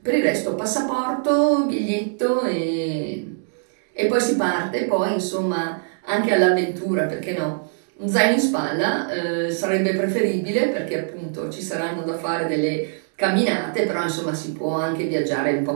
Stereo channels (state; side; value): silent; left; 64 dB below the other